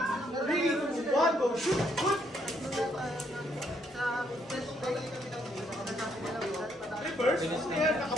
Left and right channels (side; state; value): both; normal; correlation 0.72